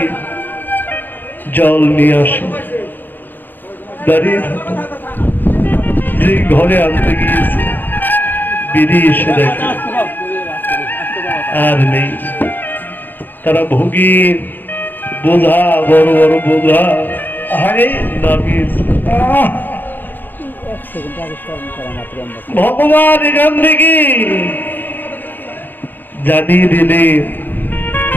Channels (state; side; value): late; right; 0.089 ms